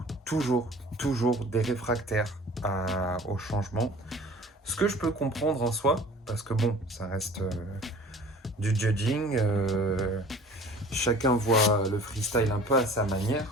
des réfractaires au changement. Ce que je peux comprendre en soi, parce que bon, ça reste du judging. Chacun voit le freestyle un peu à sa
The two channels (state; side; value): normal; both; correlation 0.46